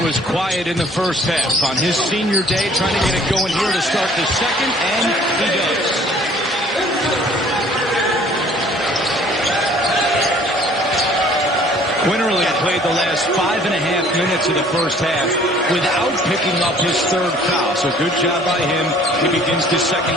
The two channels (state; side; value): normal; both; correlation 0.54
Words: was quiet in the first half. On his senior day, trying to get it going here to start the second, and he does. Quinterly played the last 5.5 minutes of the first half without picking up his third foul. So good job by him. He begins the